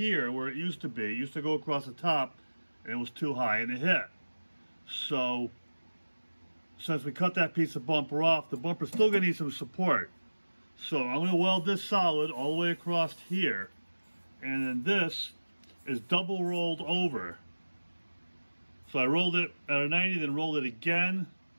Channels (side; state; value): both; inverted; correlation -1.00